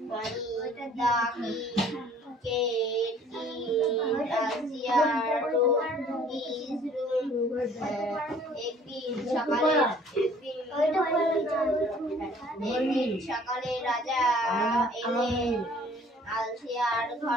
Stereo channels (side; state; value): both; normal; correlation 0.55